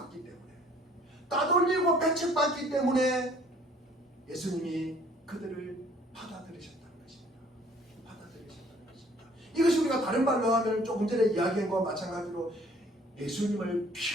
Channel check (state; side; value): normal; both; correlation 0.56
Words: 때문에 예수님이 그들을 받아들이셨다는 것입니다. 이것이 우리가 다른 말로 하면 조금 전에 이야기한 것과 마찬가지로 예수님을